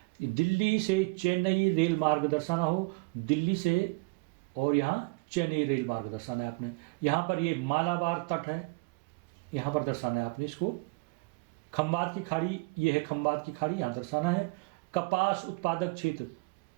दिल्ली से चेन्नई रेल मार्ग दर्शाना हो, दिल्ली से और यहाँ चेन्नई रेल मार्ग दर्शाना है आपने। यहाँ पर ये मालाबार तट है, यहाँ पर दर्शाना है आपने इसको। खंबात की खाड़ी, ये है खंबात की खाड़ी, यहाँ दर्शाना है। कपास उत्पादक क्षेत्र,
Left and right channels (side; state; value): left; quieter; 28.6 dB